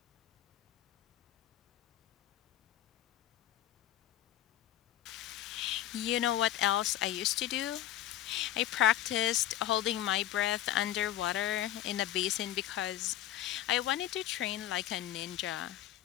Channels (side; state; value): right; quieter; 12.7 dB